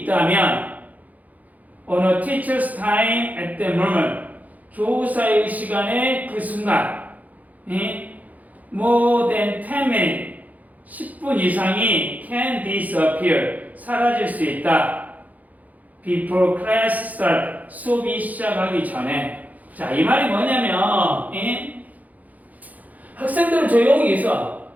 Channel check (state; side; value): late; left; 0.078 ms